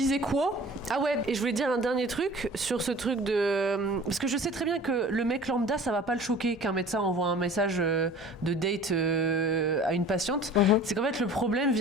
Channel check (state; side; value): normal; both; correlation 0.44